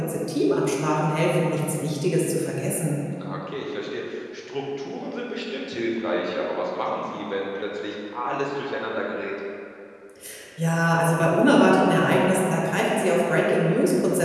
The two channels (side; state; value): both; identical; correlation 1.00